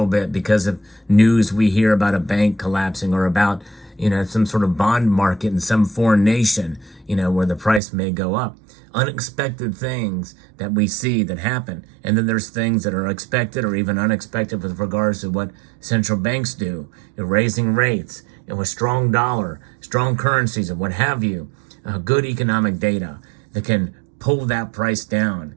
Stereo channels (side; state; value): left; drops out; at 7.8 s